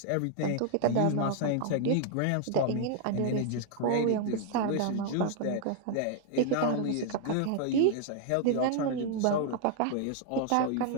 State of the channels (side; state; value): both; different; correlation 0.00